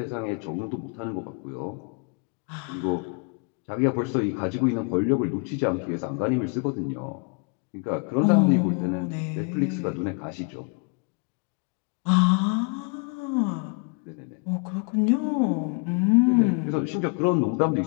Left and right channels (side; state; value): right; quieter; 35.5 dB